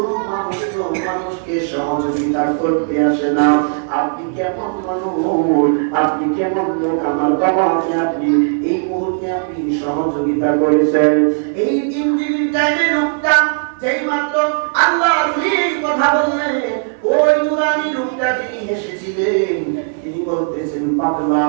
মানুষ তো মানুষকে সহযোগিতা করতে আসে না। আপনি কেমন মানুষ, আপনি কেমন লোক, আমার বাবাকে আপনি এই মুহূর্তে আপনি সহযোগিতা করেছেন। এই 3 দিনের টাইমে লোকটা যেই মাত্র আল্লাহর কথা বললেন, ওই নুরানি লোকটা যিনি এসেছিলেন তিনি বলতেছেন, পাগলা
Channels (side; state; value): left; silent; 58 dB below the other